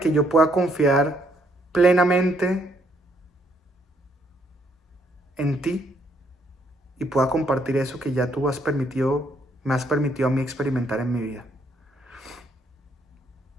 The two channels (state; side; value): normal; both; correlation 0.70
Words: yo pueda confiar plenamente en ti y pueda compartir eso que ya tú me has permitido a mí experimentar en mi vida.